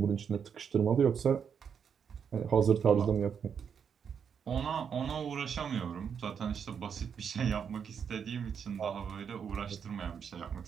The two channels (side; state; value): left; quieter; 7.2 dB